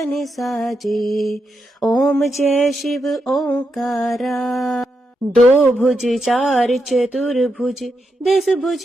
साजे। ओम जय शिव ओंकारा। दो भुज चार चतुर्भुज, 10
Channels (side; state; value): both; normal; correlation 0.84